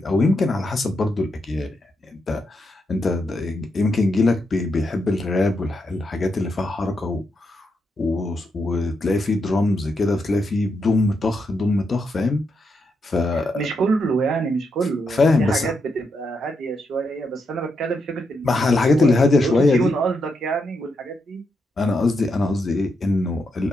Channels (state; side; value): normal; both; correlation 0.82